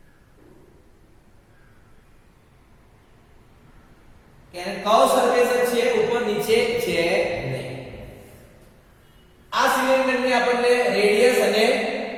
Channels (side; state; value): both; identical; correlation 1.00